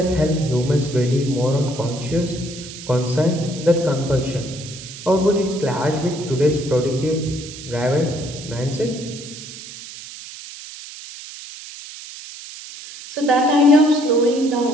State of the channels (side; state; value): right; noise; hiss, 13 dB below the sound